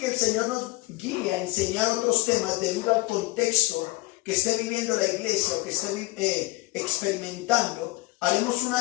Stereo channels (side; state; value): right; quieter; 21.5 dB